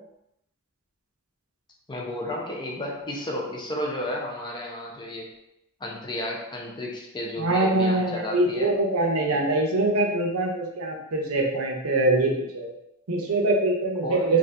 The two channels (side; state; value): both; normal; correlation 0.06